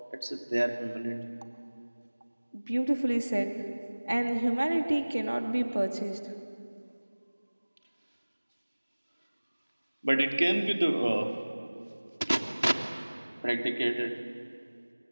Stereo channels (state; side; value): inverted; both; correlation -1.00